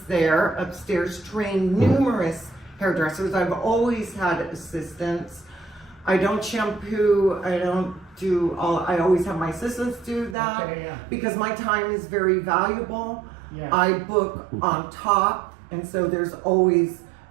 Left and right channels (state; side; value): drops out; left; at 10.4 s